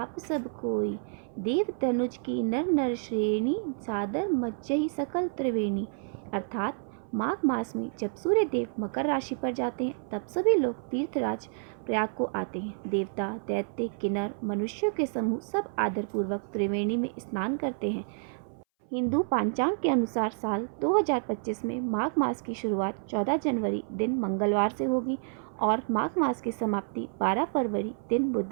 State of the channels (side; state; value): left; silent; 58 dB below the other